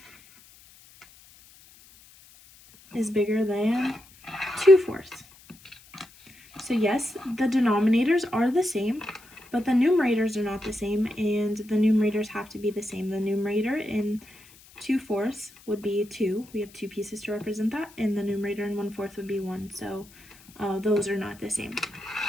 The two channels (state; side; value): noise; left; hiss, 24 dB below the sound